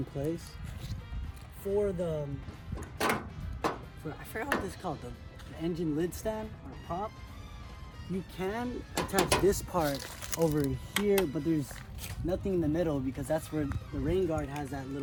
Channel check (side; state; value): both; identical; correlation 1.00